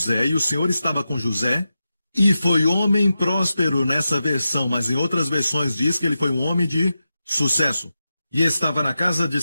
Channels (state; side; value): inverted; both; correlation -0.91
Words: e o Senhor estava com José e foi homem próspero nessa versão, mas em outras versões diz que ele foi um homem de sucesso. E estava na casa de